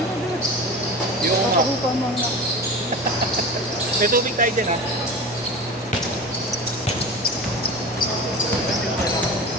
Yung Nakahupa mo na. may tubig tayo dyan ha.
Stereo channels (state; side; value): normal; both; correlation 0.32